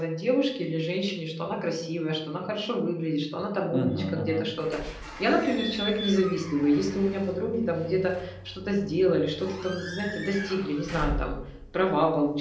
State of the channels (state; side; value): identical; both; correlation 1.00